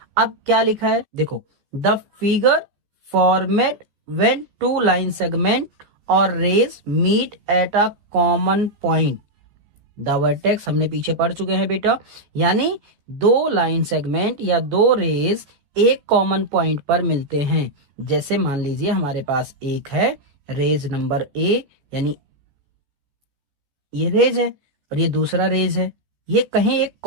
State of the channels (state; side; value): late; left; 14 ms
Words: अब क्या लिखा है देखो, the figure format when two line segment और rays meet at a common point. The vertex हमने पीछे पढ़ चुके हैं बेटा, यानी दो लाइन सेगमेंट या दो रेज एक कॉमन पॉइंट पर मिलते हैं। जैसे मान लीजिए हमारे पास एक है रेज नंबर ए, यानी ये रेज है और ये दूसरा रेज है, ये कहीं एक